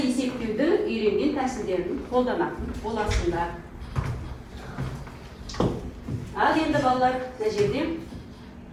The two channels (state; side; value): identical; both; correlation 1.00